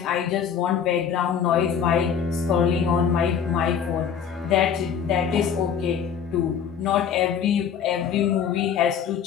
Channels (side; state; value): right; quieter; 7.6 dB